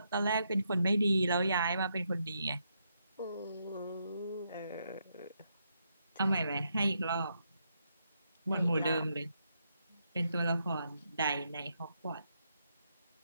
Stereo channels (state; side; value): inverted; both; correlation -0.79